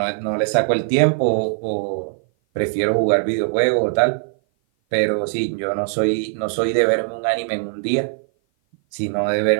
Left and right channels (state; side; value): silent; left; 56 dB below the other